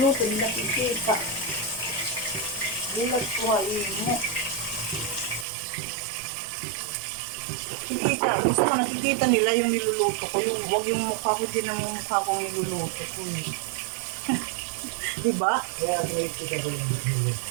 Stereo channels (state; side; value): drops out; left; at 5.5 s